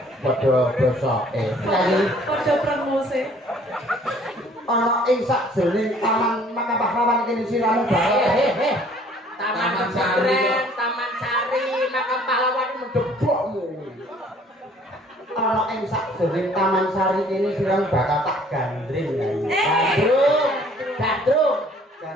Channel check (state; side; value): normal; both; correlation 0.57